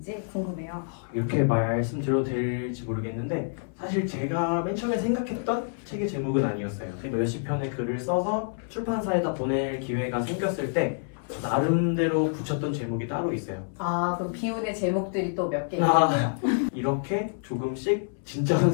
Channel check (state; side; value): silent; right; 60 dB below the other